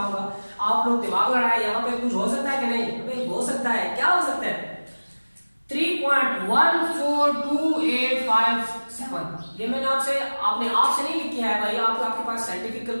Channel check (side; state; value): both; inverted; correlation -1.00